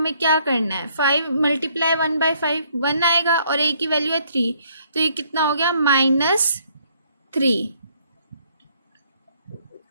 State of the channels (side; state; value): both; inverted; correlation -0.66